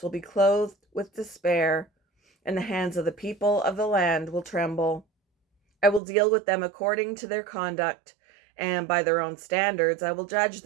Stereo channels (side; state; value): left; drops out; at 6.0 s